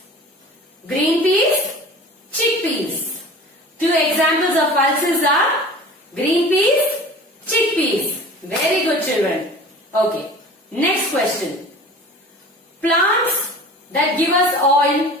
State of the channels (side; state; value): both; normal; correlation 0.40